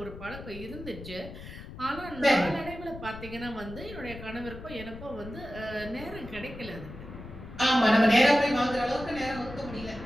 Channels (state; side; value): noise; left; rumble, 13 dB below the sound